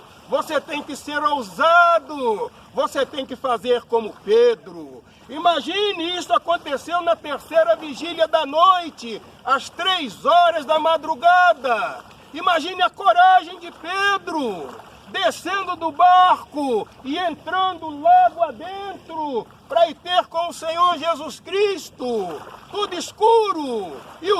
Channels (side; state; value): both; identical; correlation 1.00